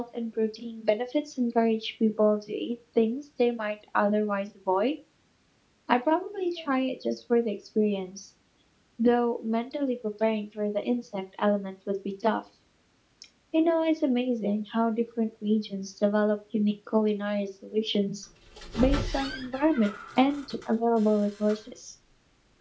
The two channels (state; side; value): identical; both; correlation 1.00